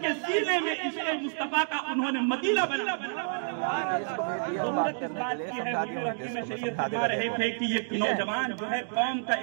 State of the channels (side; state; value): left; silent; digital silence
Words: کے سینے میں عشق مصطفیٰ کا انہوں نے مدینہ بنا۔ ضرورت اس بات کی ہے، حضور حکیم شریعت فرما رہے تھے کہ یہ نوجوان جو ہے قوم کا